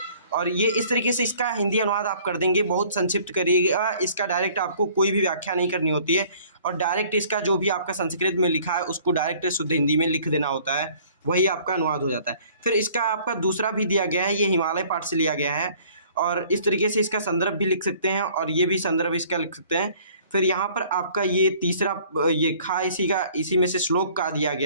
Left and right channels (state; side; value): inverted; both; correlation -0.55